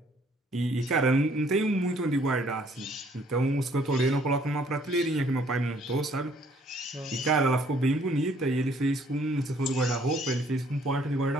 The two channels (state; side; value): normal; both; correlation 0.62